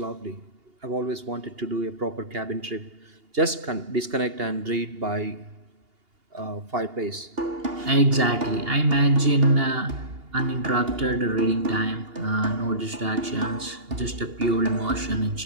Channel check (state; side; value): late; left; 2.8 ms